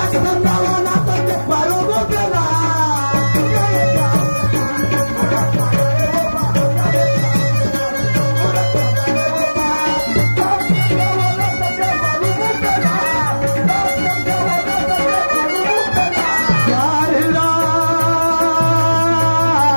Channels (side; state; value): both; inverted; correlation -1.00